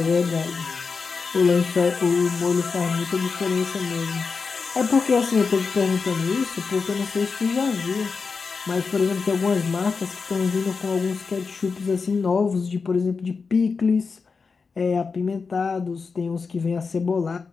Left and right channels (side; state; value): right; quieter; 4.9 dB